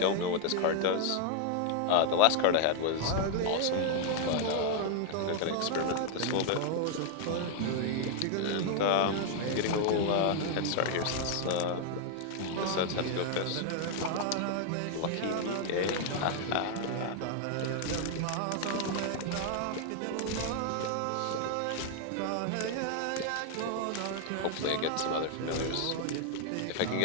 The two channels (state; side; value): different; both; correlation 0.00